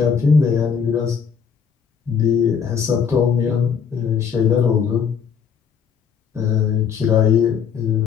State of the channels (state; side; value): quieter; right; 6.9 dB